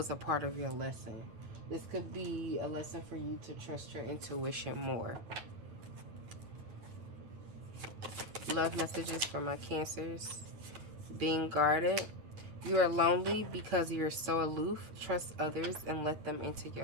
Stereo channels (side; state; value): left; late; 9.2 ms